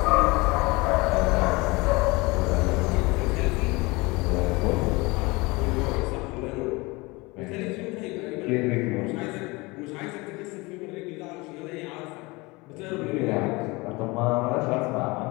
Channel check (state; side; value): quieter; right; 24.2 dB